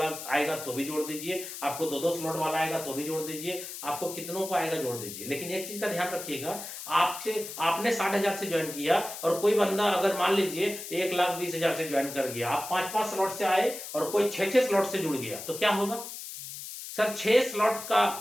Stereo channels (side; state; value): left; noise; hiss, 10 dB below the sound